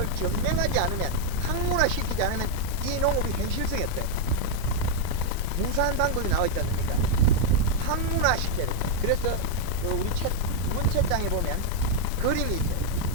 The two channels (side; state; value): both; different; correlation 0.00